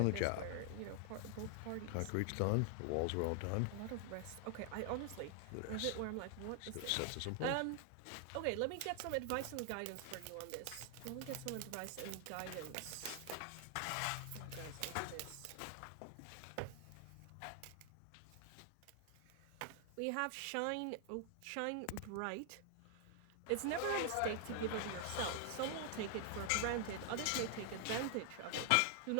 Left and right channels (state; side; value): different; both; correlation 0.00